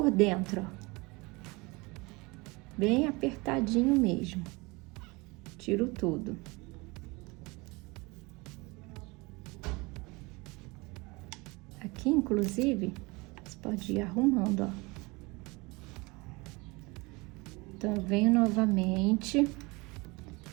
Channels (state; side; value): quieter; left; 25.3 dB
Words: dentro, ó. Bem apertadinho mesmo. Tiro tudo. Aqui, inclusive, você pode ir arrumando, ó. Então, eu venho novamente,